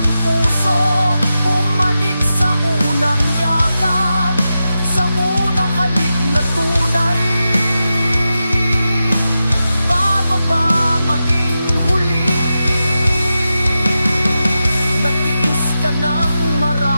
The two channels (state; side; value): inverted; both; correlation -0.90